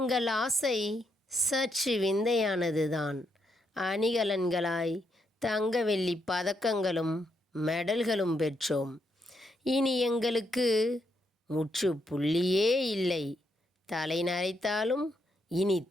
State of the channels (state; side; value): normal; both; correlation 0.78